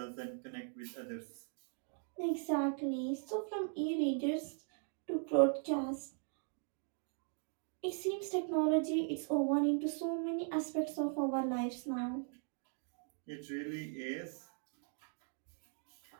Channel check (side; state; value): left; silent; 52 dB below the other